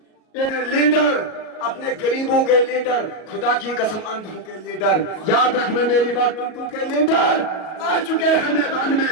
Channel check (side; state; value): right; late; 38 ms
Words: लीडर, अपने गरीबों के लीडर, खुदा की कसम अंधों के लीडर, याद रखना मेरी बात, टुनटू के लीडर आ चुके हैं मैदान